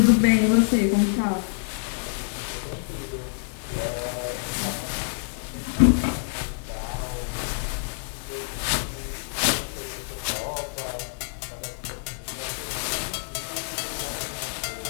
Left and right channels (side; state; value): right; silent; 60 dB below the other